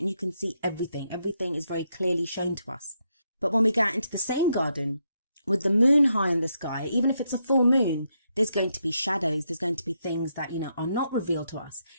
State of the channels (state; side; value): inverted; both; correlation -0.80